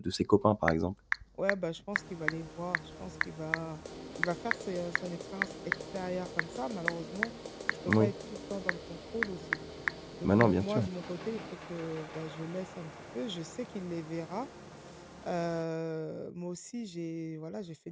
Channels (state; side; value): identical; both; correlation 1.00